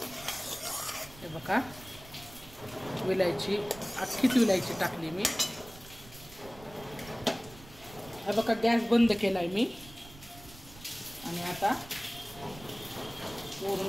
हे बघा, विलायची, अख्खीच विलायची टाकली मी. हे बघा, गॅस बंद केलाय मी. आणि आता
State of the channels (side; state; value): right; noise; rumble, 18 dB below the sound